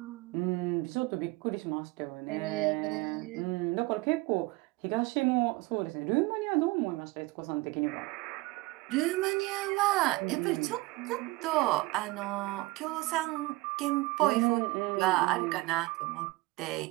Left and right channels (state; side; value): quieter; left; 22.0 dB